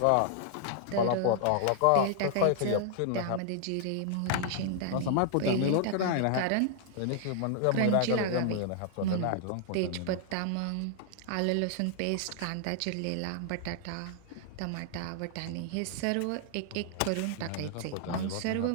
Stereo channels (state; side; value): different; both; correlation -0.01